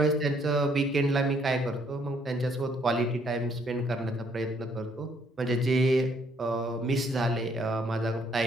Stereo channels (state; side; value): normal; both; correlation 0.67